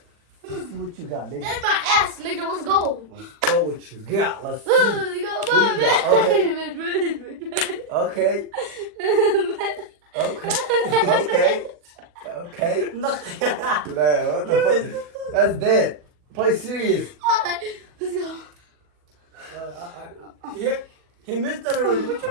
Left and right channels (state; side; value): late; left; 40 ms